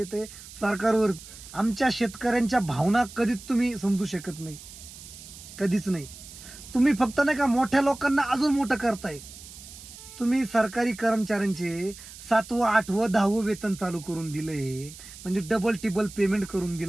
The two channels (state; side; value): noise; right; hiss, 16 dB below the sound